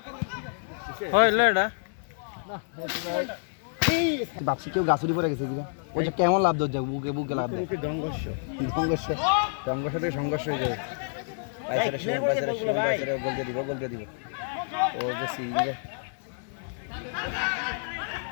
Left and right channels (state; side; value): silent; right; 57 dB below the other